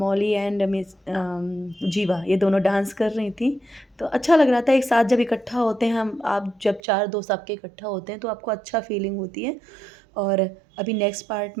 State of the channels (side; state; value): left; drops out; at 6.8 s